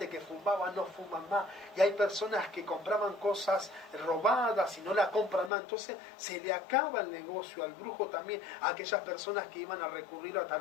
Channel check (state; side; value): drops out; right; at 5.5 s